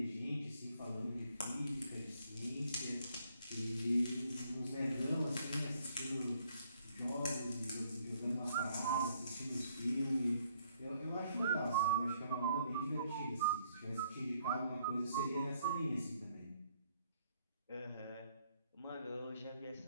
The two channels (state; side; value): inverted; both; correlation -0.68